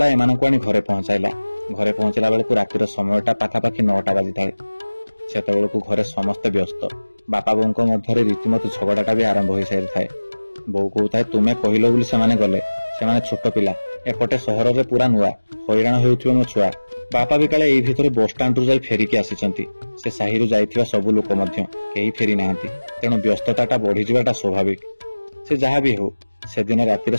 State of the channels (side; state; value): both; inverted; correlation -1.00